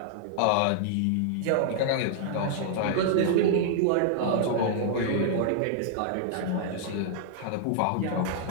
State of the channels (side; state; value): both; different; correlation -0.01